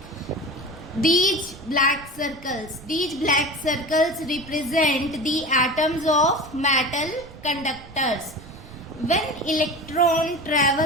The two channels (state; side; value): noise; right; rumble, 19 dB below the sound